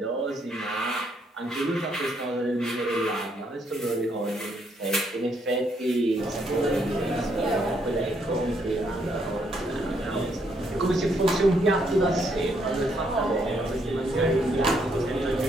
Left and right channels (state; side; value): normal; both; correlation 0.72